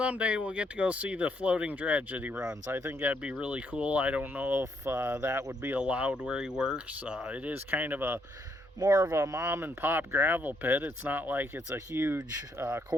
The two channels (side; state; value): both; normal; correlation 0.73